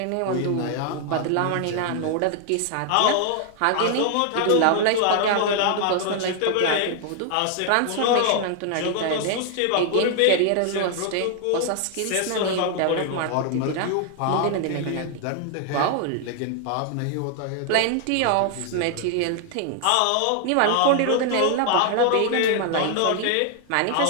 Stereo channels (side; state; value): both; different; correlation 0.00